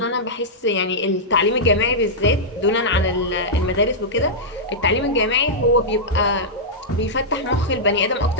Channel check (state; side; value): normal; both; correlation -0.10